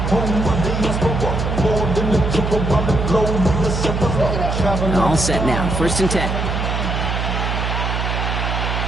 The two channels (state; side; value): noise; right; hum, 1 dB below the sound